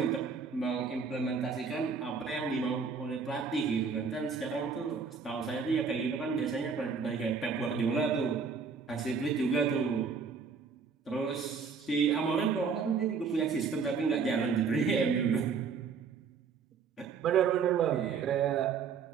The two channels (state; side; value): quieter; left; 5.6 dB